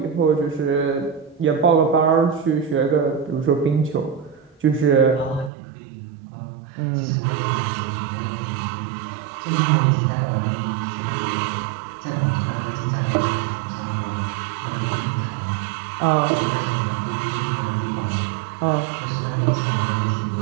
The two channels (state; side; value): drops out; left; at 5.5 s